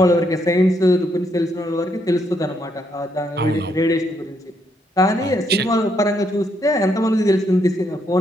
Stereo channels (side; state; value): both; normal; correlation 0.75